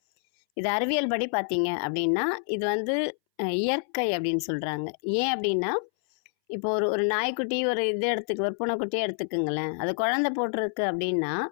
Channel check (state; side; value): silent; right; 60 dB below the other